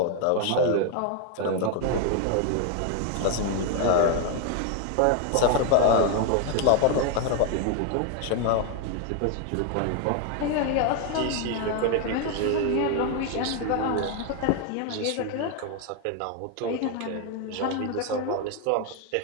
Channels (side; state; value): both; different; correlation 0.00